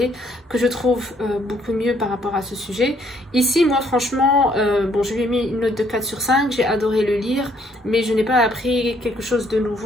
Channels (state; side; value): normal; both; correlation 0.67